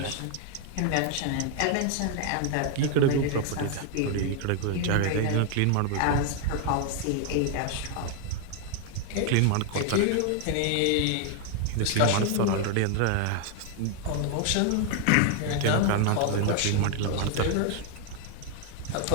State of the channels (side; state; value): both; different; correlation 0.01